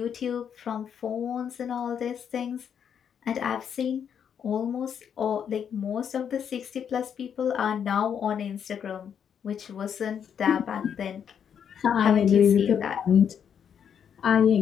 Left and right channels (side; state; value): right; quieter; 8.0 dB